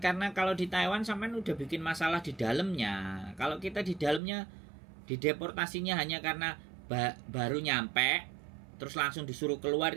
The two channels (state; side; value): drops out; left; at 4.2 s